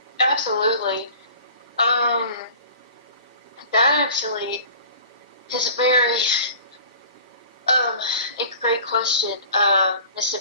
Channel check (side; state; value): both; inverted; correlation -0.43